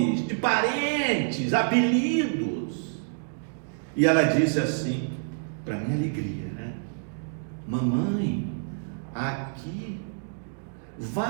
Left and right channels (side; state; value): left; silent; digital silence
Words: de parentes, apelidos. E ela disse assim, para minha alegria, né? Mamãe, aqui